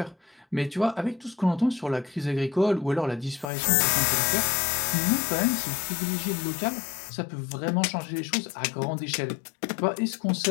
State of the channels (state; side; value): drops out; right; at 3.5 s